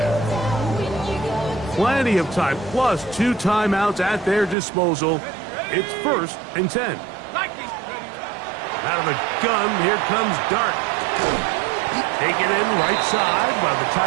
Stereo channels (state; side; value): drops out; left; at 4.5 s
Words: Plenty of time, plus 2 timeouts at their disposal. It's first and 10. Out of the gun, here comes Dart. Taken in right side by the